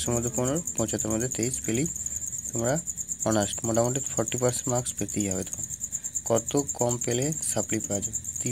মধ্যে 15, 75-এর মধ্যে 23 পেলেই তোমরা অনার্স মোটামুটি 40% মার্কস পেতেই হবে। তোমার কত কম পেলে সাপ্লি পাওয়া যাবে?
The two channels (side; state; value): both; identical; correlation 1.00